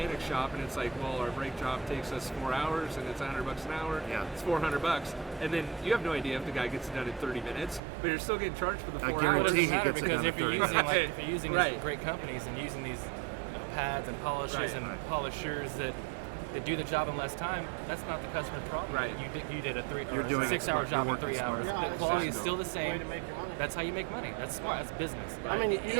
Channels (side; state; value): left; drops out; at 7.8 s